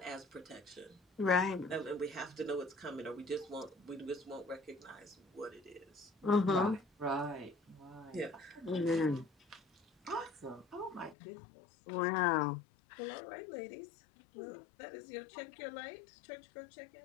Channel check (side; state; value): right; drops out; at 11.2 s